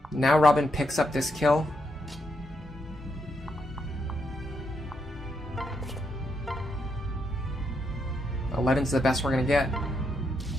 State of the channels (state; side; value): normal; both; correlation 0.79